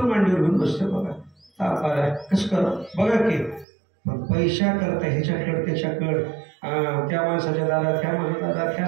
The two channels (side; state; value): left; drops out; at 3.7 s